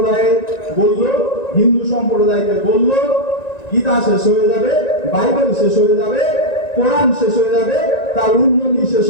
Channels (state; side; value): late; right; 1.9 ms